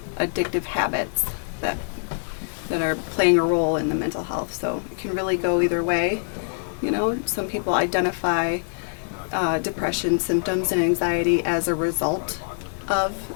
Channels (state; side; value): silent; right; digital silence